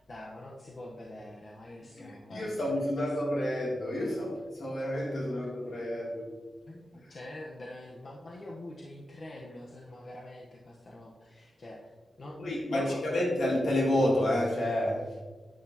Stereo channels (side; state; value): both; normal; correlation 0.88